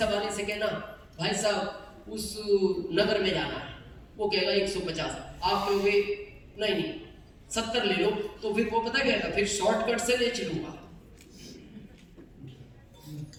वाले से कहना भाई साहब उस नगर में जाना है, वो कहेगा 150, आप कहोगे नहीं 70 ले लो, तो फिर वो पता क्या, फिर शॉर्टकट से ले चलूंगा,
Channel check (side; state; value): both; identical; correlation 1.00